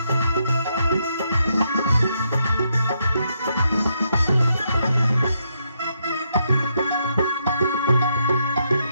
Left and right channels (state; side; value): inverted; both; correlation -0.78